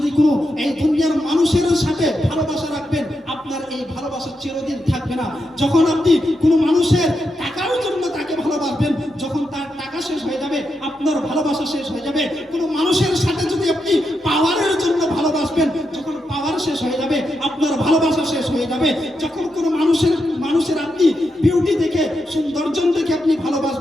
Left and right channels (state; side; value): normal; both; correlation 0.85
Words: কোনো এই দুনিয়ার মানুষের সাথে ভালোবাসা রাখবেন, আপনার এই ভালোবাসা চিরদিন থাকবে না। যখন আপনি কোনো মানুষের টাকার জন্য তাকে ভালোবাসবেন, যখন তার টাকা শেষ হয়ে যাবে আপনার ভালোবাসা শেষ হয়ে যাবে। কোনো মানুষের সাথে যদি আপনি পাওয়ারের জন্য ভালোবাসবেন, যখন পাওয়ার শেষ হয়ে যাবে আপনার ভালোবাসা শেষ হয়ে যাবে। যখন কোনো মানুষের আপনি বিউটি দেখে, সৌন্দর্য দেখে আপনি